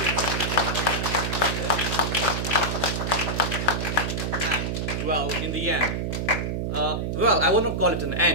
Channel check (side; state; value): right; noise; hum, 1 dB below the sound